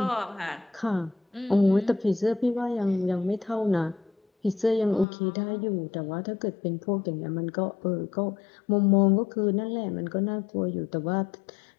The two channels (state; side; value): drops out; right; at 5.1 s